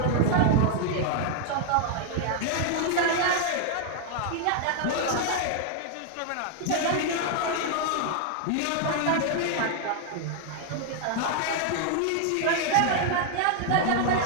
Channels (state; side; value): different; both; correlation 0.00